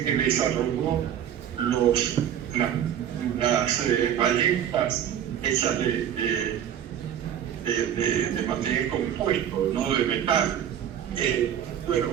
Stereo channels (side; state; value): left; quieter; 9.7 dB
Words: que desarrolló las balletas hechas de material compuesto, no de metal. Bueno,